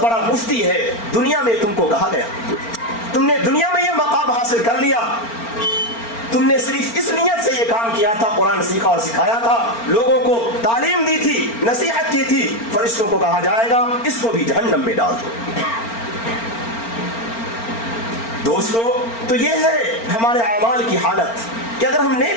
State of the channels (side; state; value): right; late; 4.4 ms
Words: بڑا مفتی ہے. دنیا میں تم کو کہا گیا, تم نے دنیا میں یہ مقام حاصل کر لیا, تم نے صرف اس نیت سے یہ کام کیا تھا, قرآن سیکھا اور سکھایا تھا, لوگوں کو تعلیم دی تھی, نصیحت کی تھی. فرشتوں کو کہا جائے گا اس کو بھی جہنم میں ڈال دو. دوستو تو یہ ہے ہمارے اعمال کی حالت. کہ اگر ہم